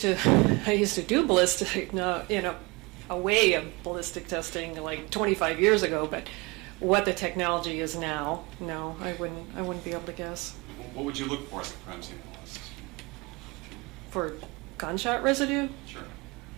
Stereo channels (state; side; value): quieter; left; 26.2 dB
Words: to do ballistic, a way of ballistic testing like 25 years ago, but what the technology is now, no, I wouldn't be able to guess. What would you look for as a crime scene analyst? For gunshot residue? Sure.